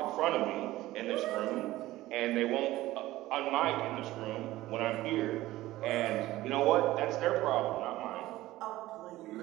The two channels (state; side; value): quieter; left; 16.7 dB